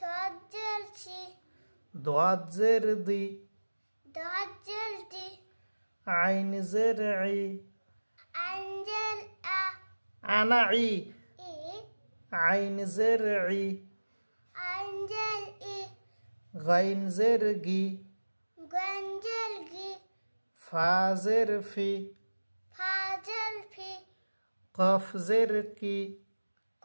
ضاد زر ضي ضاد زر دي عين زر عي أنزل أنا عي إيه عين زر عي أنزل إيه غين زر جي غنزل جي فا زر في فازل في قاف زر كي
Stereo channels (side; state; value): both; inverted; correlation -1.00